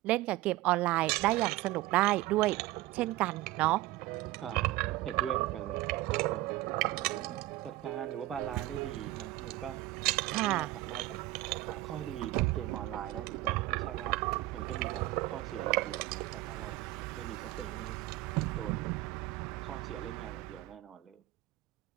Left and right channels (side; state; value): left; quieter; 17.0 dB